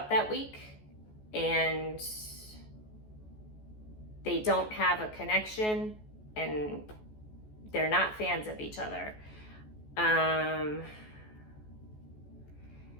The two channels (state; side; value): late; right; 14 ms